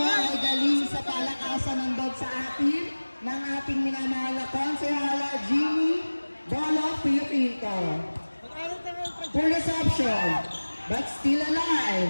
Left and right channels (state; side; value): inverted; both; correlation -1.00